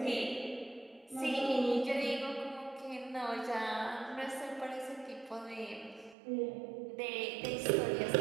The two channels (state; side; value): drops out; left; at 6.2 s